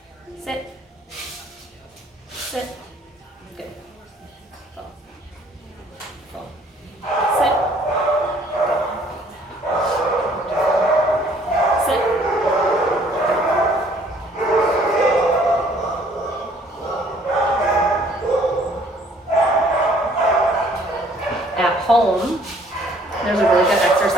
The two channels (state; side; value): normal; both; correlation 0.59